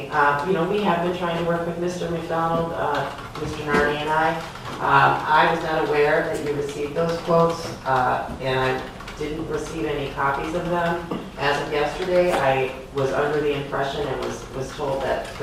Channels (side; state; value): both; identical; correlation 1.00